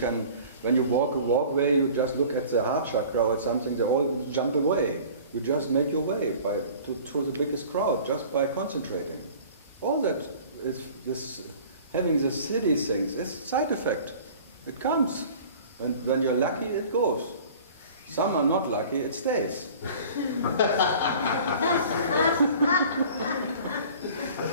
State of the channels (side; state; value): both; inverted; correlation -0.45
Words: when you walk a walkway, you just look at the heart chakra or something. They all jump away. You just make your way through the biggest crowd just by concentrating. All that is this having the city things is a side effect. It comes, and when you're lucky, it goes. Some are not lucky, it stays.